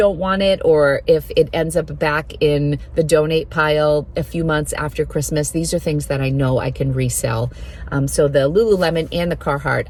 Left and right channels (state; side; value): identical; both; correlation 1.00